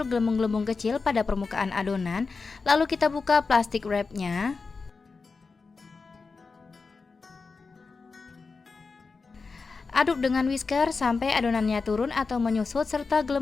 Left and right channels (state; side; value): quieter; right; 4.4 dB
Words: gelembung-gelembung kecil pada permukaan adonan. Lalu kita buka plastik wrapnya. Aduk dengan whisker sampai adonannya turun atau menyusut serta